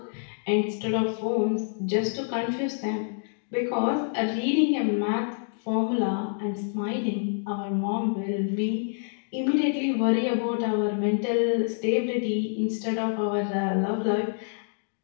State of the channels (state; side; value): silent; right; digital silence